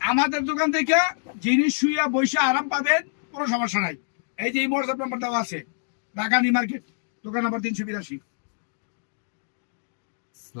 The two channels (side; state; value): right; silent; digital silence